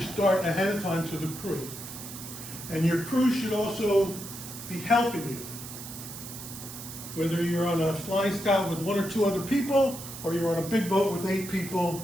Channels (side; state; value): right; noise; hiss, 11 dB below the sound